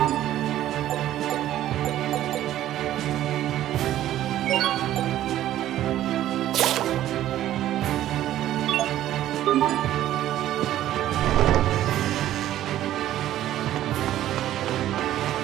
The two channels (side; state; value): left; quieter; 13.0 dB